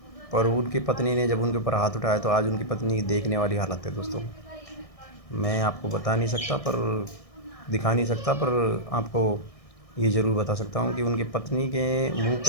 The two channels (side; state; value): right; late; 1.6 ms